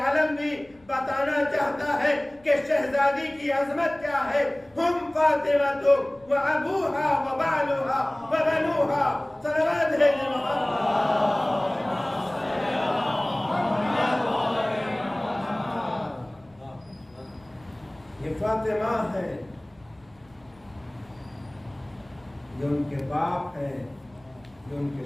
بھی بتانا چاہتا ہے کہ شہزادی کی عظمت کیا ہے۔ ہم فاطمہ و ابوہا و بالوہا و بنوہا، صلوات ہے محمد۔ یہ فاطمہ ہے، یہ ان کے باپ ہیں، یہ ان کے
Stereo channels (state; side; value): noise; left; rumble, 30 dB below the sound